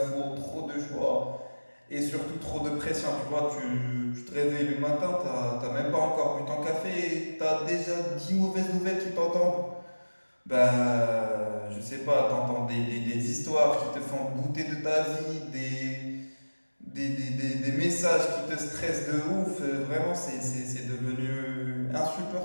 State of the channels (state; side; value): inverted; both; correlation -1.00